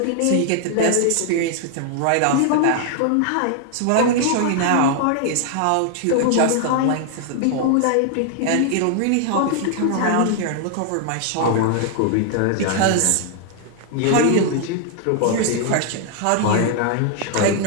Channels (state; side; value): different; both; correlation 0.00